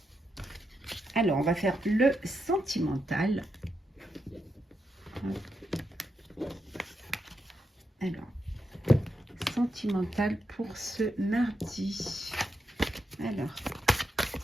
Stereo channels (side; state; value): both; normal; correlation 0.84